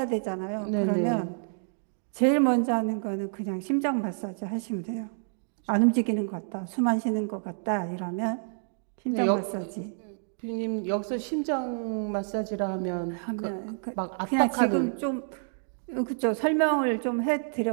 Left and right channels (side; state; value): left; silent; digital silence